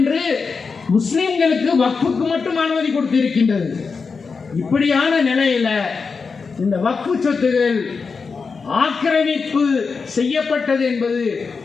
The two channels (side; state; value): right; quieter; 5.0 dB